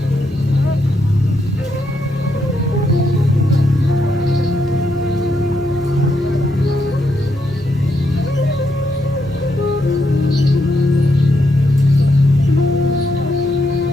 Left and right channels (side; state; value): both; normal; correlation 0.79